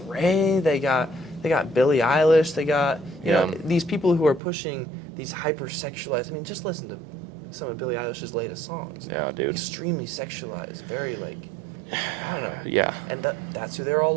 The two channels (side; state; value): left; drops out; at 4.4 s